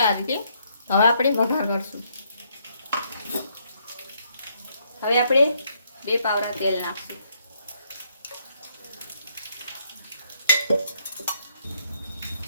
આ રીતે હવે આપણે વઘાર કરશું। હવે આપણે 2 પાવડા તેલ નાખશું।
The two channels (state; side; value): inverted; both; correlation -0.72